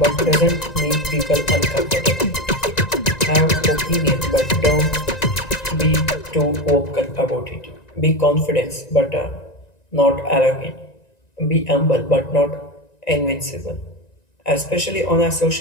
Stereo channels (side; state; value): right; late; 1.9 ms